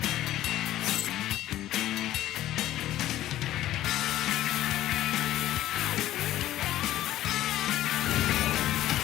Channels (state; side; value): quieter; right; 13.9 dB